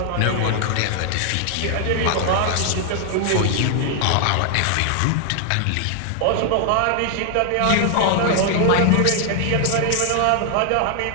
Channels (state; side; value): different; both; correlation 0.00